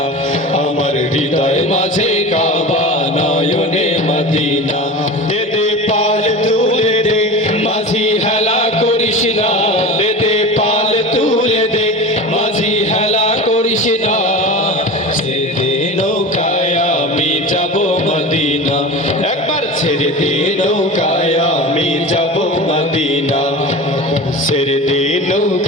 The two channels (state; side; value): normal; both; correlation 0.31